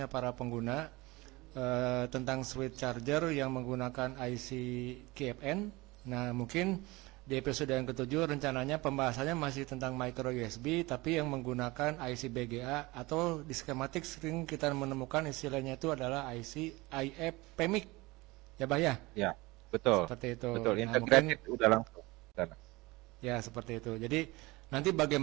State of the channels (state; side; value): quieter; left; 22.3 dB